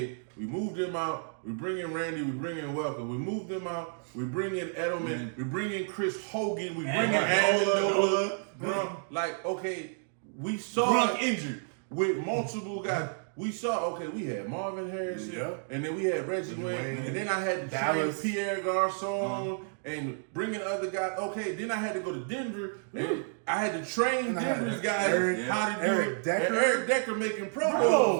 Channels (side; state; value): left; silent; digital silence